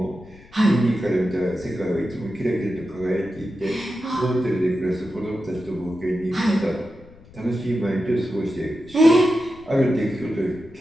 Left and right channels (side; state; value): left; noise; rumble, 23 dB below the sound